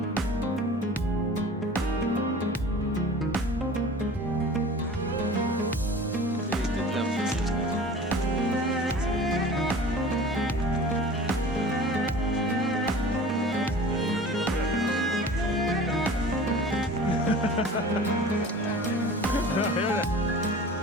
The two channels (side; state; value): both; normal; correlation 0.41